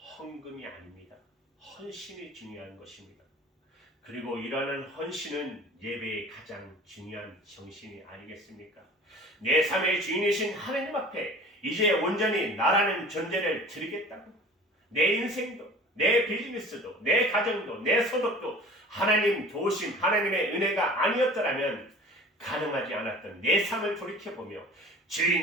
아닙니다. 헌신이 중요한 것입니다. 그리고 이러한 헌신은 예배의 가장 중요한 정신이 아니겠습니까? 내 삶의 주인이신 하나님 앞에 이제 온전히 나라는 존재를 드리겠다고, 내 인생도, 내 비즈니스도, 내 가정도, 내 소득도 하나님 도우심, 하나님의 은혜가 아니었더라면 가능하지 않았던 내 삶을 돌이켜보며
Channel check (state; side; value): normal; both; correlation 0.43